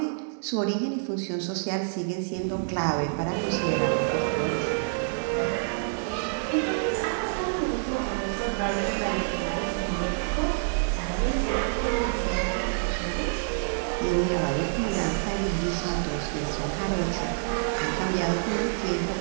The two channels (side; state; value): left; silent; digital silence